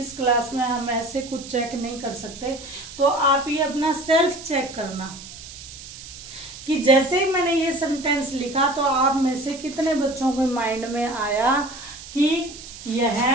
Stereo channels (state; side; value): noise; right; hiss, 14 dB below the sound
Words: क्लास में हम ऐसे कुछ चेक नहीं कर सकते। तो आप ये अपना सेल्फ चेक करना कि जैसे ही मैंने ये सेंटेंस लिखा तो आप में से कितने बच्चों के माइंड में आया कि